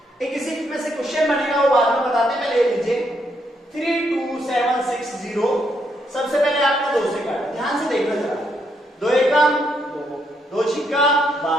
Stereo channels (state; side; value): normal; both; correlation 0.76